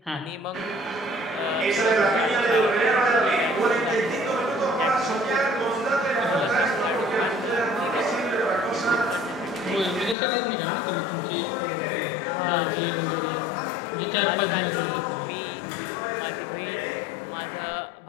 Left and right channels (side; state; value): right; drops out; at 10.2 s